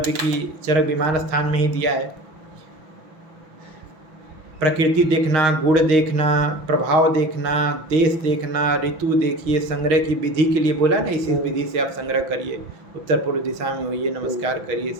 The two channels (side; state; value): left; late; 6.0 ms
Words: की चरक विमान स्थान में ही दिया है। प्रकृति देखना, गुण देखना, प्रभाव देखना, देश देखना, ऋतु देखिए, संग्रह की विधि के लिए बोला ना, इसी विधि से आप संग्रह करिए, उत्तर पूर्व दिशा में होइए, नमस्कार करिए,